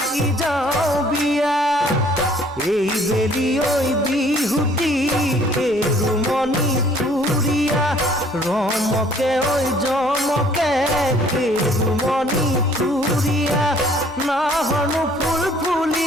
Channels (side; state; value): both; normal; correlation 0.58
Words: যাও বিয়া এই বেলি ওই বিহুতি কেরুমনি থুরিয়া রমকে ওই জমকে কেরুমনি থুরিয়া নাহনু ফুল